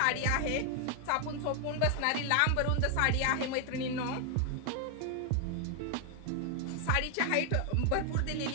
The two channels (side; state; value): both; different; correlation 0.00